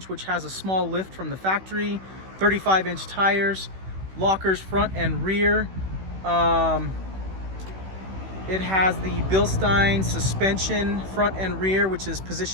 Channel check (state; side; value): late; left; 16 ms